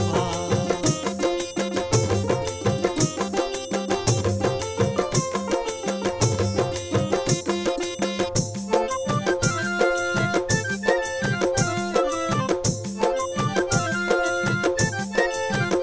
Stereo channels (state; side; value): identical; both; correlation 1.00